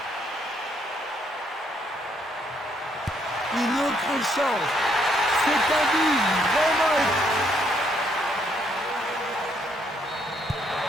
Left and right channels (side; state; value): both; normal; correlation 0.71